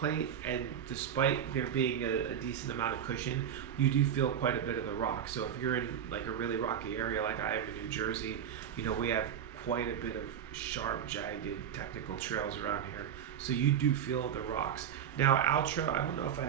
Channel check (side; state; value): left; quieter; 9.0 dB